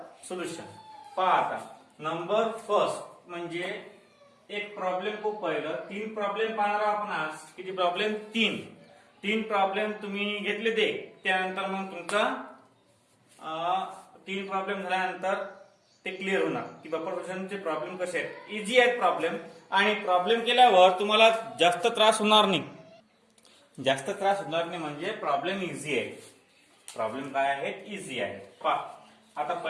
solution. पहा आता नंबर फर्स्ट म्हणजे एक प्रॉब्लेम को पहिलं. तीन प्रॉब्लेम पाहणार आपण आज. किती प्रॉब्लेम? तीन प्रॉब्लेम तुम्ही घेतले ते. त्यानंतर मग तुमचा तीन प्रॉब्लेम झाल्यानंतर ते क्लिअर होणार की बफर सोल्युशनचे प्रॉब्लेम कसे आहेत. इझी आहेत प्रॉब्लेम आणि प्रॉब्लेम केल्यावर तुम्हाला जास्त त्रास होणार नाही. जास्त त्रास होणार नाही म्हणजे प्रॉब्लेम इझी आहे. प्रॉब्लेम काय आहेत? इझी आहे. पहा आता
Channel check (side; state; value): both; identical; correlation 1.00